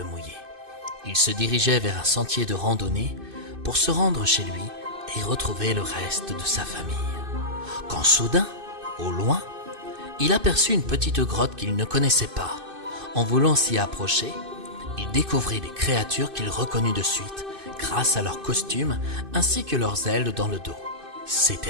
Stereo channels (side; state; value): left; late; 2.6 ms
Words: mouillé. Il se dirigeait vers un sentier de randonnée pour se rendre chez lui et retrouver le reste de sa famille. Quand soudain, au loin, il aperçut une petite grotte qu'il ne connaissait pas. En voulant s'y approcher, il découvrit des créatures qu'il reconnut de suite grâce à leurs costumes ainsi que leurs ailes dans le dos.